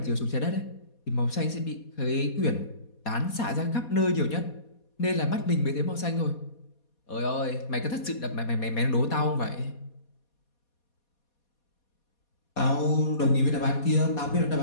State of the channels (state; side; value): late; right; 4.2 ms